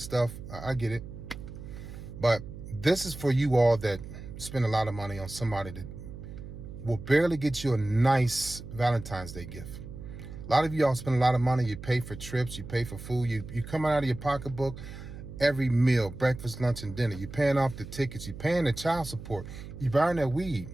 stuff. I get it. But this is for you all that spend a lot of money on somebody that will barely get you a nice Valentine's Day gift. A lot of y'all spend a lot of money. You pay for trips. You pay for food. You come out of your pocketbook every meal, breakfast, lunch, and dinner. You're paying off the tickets. You're paying the child support. You're buying that weed.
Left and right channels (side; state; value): right; noise; hum, 12 dB below the sound